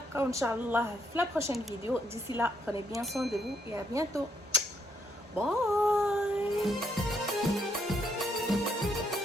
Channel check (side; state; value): both; normal; correlation 0.74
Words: ان شاء الله في la prochaine vidéo. D'ici là, prenez bien soin de vous et à bientôt.